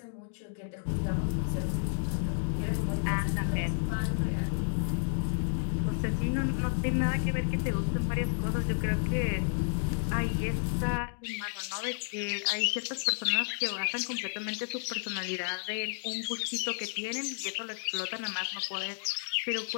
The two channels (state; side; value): silent; right; digital silence